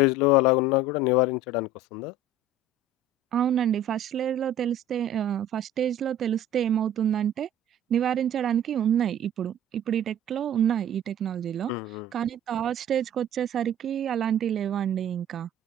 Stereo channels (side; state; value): both; normal; correlation 0.44